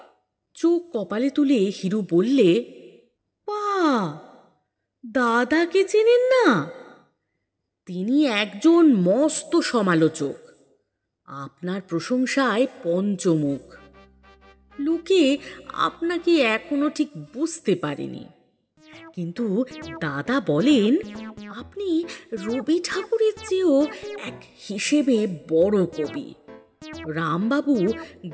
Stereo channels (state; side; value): identical; both; correlation 1.00